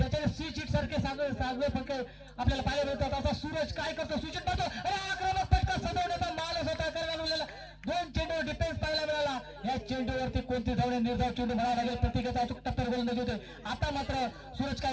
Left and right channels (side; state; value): both; identical; correlation 1.00